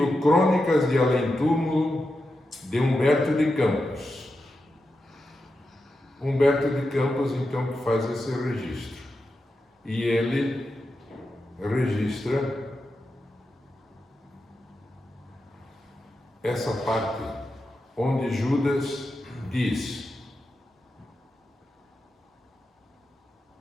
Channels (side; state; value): both; normal; correlation 0.89